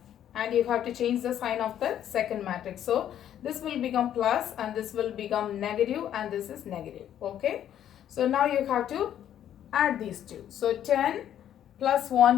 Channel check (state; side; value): quieter; right; 10.6 dB